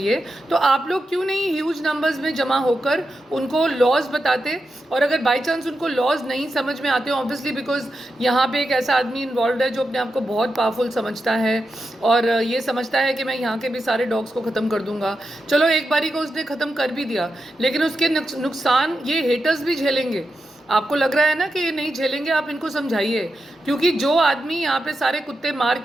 तो आप लोग क्यों नहीं ह्यूज नंबर्स में जमा होकर उनको लॉज बताते। और अगर बाई चांस उनको लॉज नहीं समझ में आते, ऑब्वियसली बिकॉज यहाँ पे एक ऐसा आदमी इन्वॉल्व है जो अपने आप को बहुत पावरफुल समझता है और ये समझता है कि मैं यहाँ के भी सारे डॉग्स को ख़त्म कर दूंगा। चलो एक बारी को उसने ख़त्म कर भी दिया, लेकिन उसके नुकसान ये हेटर्स भी झेलेंगे। आपको लग रहा है ना कि ये नहीं झेलेंगे, आप इनको समझाइए। क्योंकि जो आदमी यहाँ पे सारे कुत्ते मार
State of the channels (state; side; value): normal; both; correlation 0.88